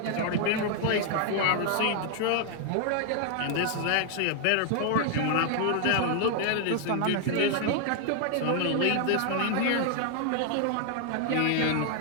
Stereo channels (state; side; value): different; both; correlation 0.00